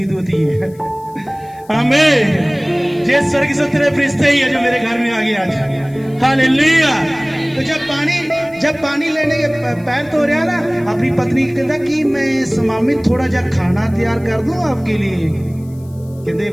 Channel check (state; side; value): noise; left; hiss, 29 dB below the sound